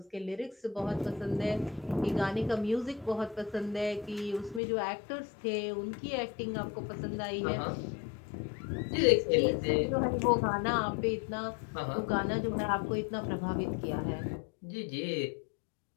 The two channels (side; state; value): right; drops out; at 4.6 s